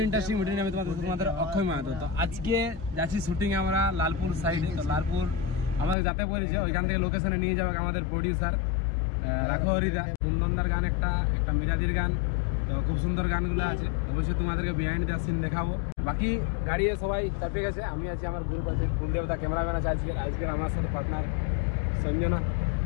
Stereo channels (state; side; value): drops out; right; at 6.0 s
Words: ইন্টারেস্টিং ভিডিও নিয়ে আমি তোমাদের অক্ষয় মাহাতো। তো আজকে যাচ্ছি শুটিং আমরা লালপুর সাইডে। তো লালপুর আমাদের যাতে বলেছে, ওইখান থেকে লোকেশনে নিয়ে যাবে আমাদের প্রডিউসার রাখো হরিদা। কুন্দনদার গান একটা মিরাদির গান, তো খুব সুন্দর গানগুলো আছে। অবশ্যই তোমাদেরকে বিহাইন্ড দ্য সিন দেখাবো। বাকি গাড়িয়ে সবাই চাপে গেছে, আমি আছি, আমার গ্রুপ আছে, কুলদেবতা ক্যামেরাম্যান আছে আজকের আমার সাথে পার্টনার সঞ্জনা।